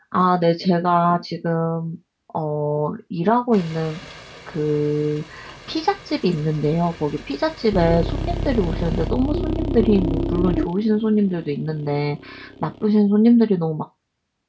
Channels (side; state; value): both; identical; correlation 1.00